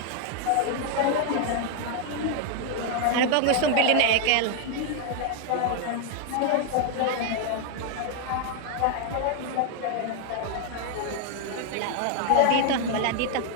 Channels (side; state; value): both; different; correlation 0.00